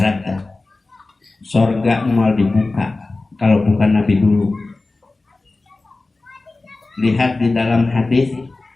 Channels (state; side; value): quieter; right; 3.3 dB